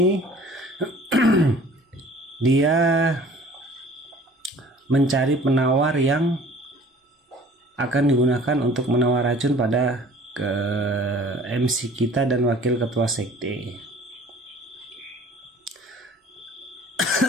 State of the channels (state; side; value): normal; both; correlation 0.49